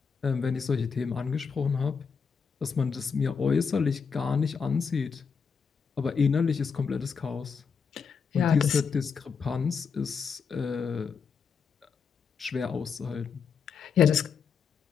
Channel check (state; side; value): quieter; right; 5.9 dB